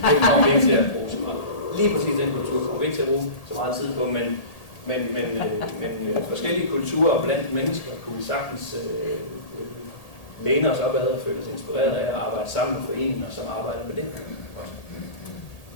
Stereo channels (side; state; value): right; late; 1.8 ms